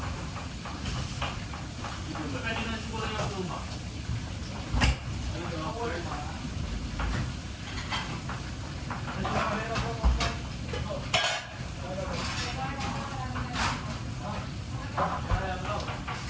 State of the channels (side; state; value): both; identical; correlation 1.00